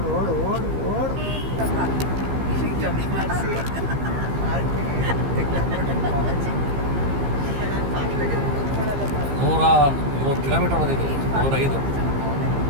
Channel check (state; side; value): late; left; 15 ms